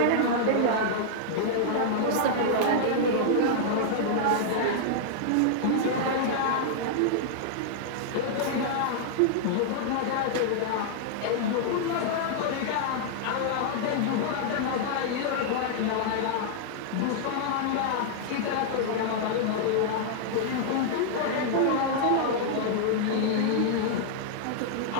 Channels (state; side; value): different; both; correlation -0.01